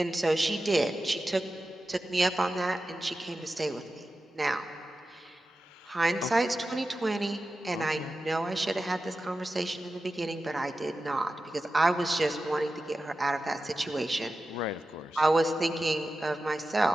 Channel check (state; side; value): normal; both; correlation 0.93